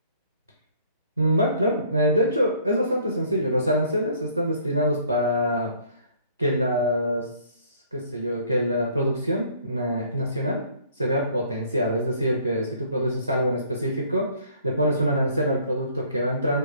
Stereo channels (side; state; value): both; inverted; correlation -0.59